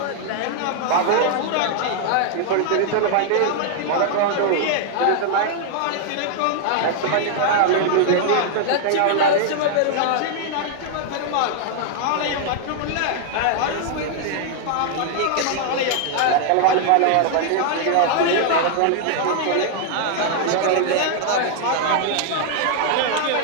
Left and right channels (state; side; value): different; both; correlation 0.00